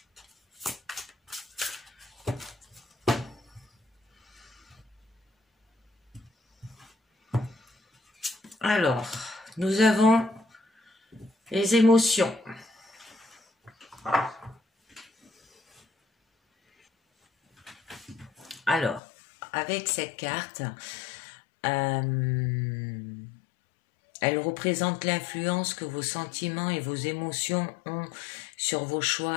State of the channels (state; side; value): drops out; right; at 19.0 s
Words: Alors, nous avons les émotions. Alors, avec cette carte, elle représente l'influence que vos sentiments et vos émotions ont sur vos